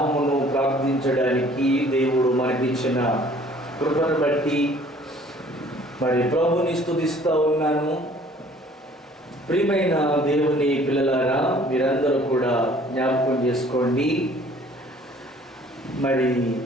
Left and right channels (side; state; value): both; normal; correlation 0.55